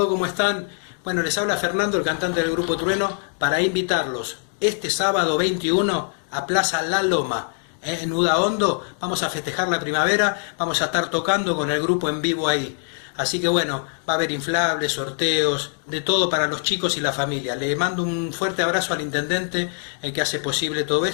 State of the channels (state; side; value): silent; right; 57 dB below the other